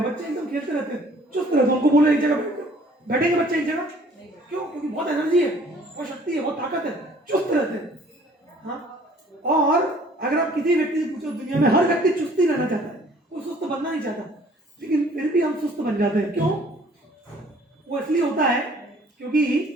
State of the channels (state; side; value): normal; both; correlation 0.56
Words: बच्चे एकदम खेलते रहते हैं, चुस्त रहते हैं। उनको बोलो एक जगह बैठेंगे बच्चे एक जगह, क्यों? क्योंकि बहुत एनर्जी है, बहुत शक्ति है, बहुत ताकत है, चुस्त रहते हैं। हाँ, और अगर आप किसी व्यक्ति से पूछो, दुनिया में हर व्यक्ति चुस्त ही रहना चाहता है, कोई सुस्त बनना नहीं चाहता, लेकिन फिर भी हम सुस्त बन जाते हैं। क्यों? वो इसलिए होता है क्योंकि